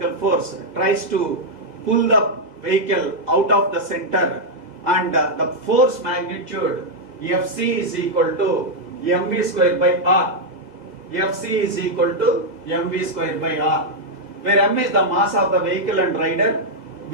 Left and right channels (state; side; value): late; left; 2.0 ms